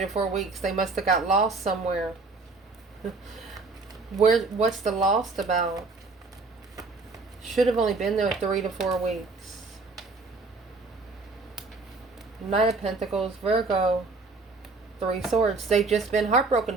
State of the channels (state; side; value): quieter; left; 3.8 dB